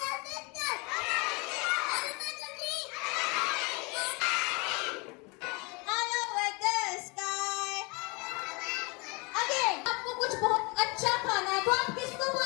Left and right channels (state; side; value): quieter; right; 28.7 dB